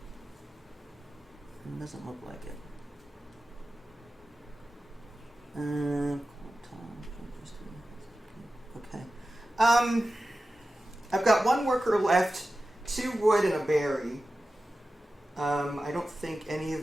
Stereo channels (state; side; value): normal; both; correlation 0.94